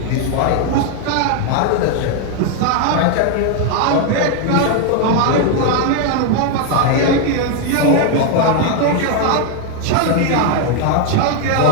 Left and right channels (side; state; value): both; different; correlation 0.01